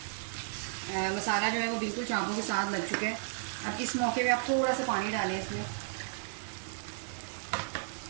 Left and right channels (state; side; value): silent; left; digital silence